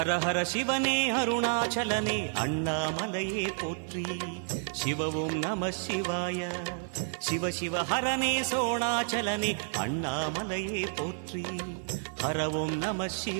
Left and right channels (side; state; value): left; silent; digital silence